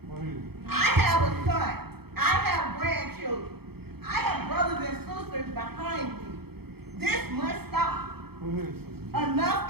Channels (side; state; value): left; late; 0.96 ms